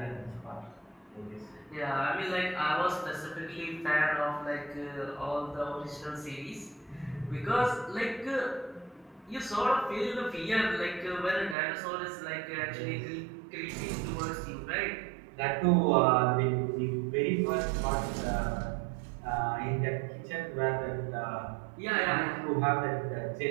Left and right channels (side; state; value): left; drops out; at 11.6 s